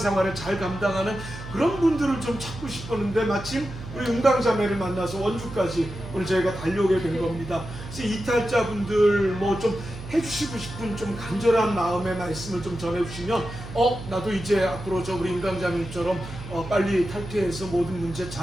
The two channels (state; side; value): noise; right; hum, 12 dB below the sound